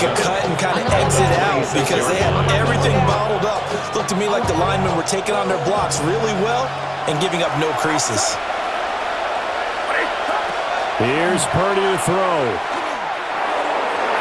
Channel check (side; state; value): both; identical; correlation 1.00